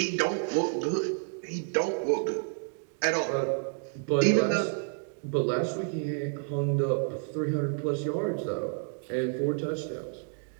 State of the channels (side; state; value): left; silent; 58 dB below the other